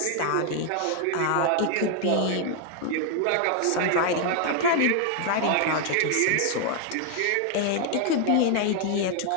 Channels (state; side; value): different; both; correlation 0.00